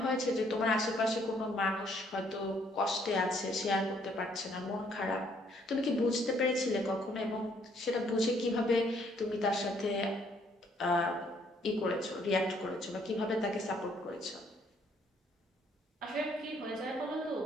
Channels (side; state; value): both; normal; correlation 0.66